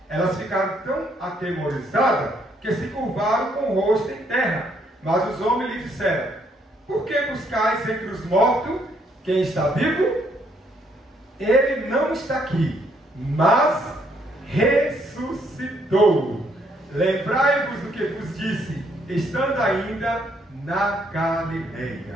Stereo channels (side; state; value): both; normal; correlation 0.70